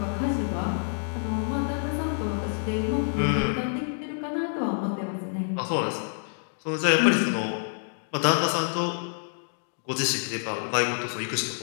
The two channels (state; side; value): silent; right; digital silence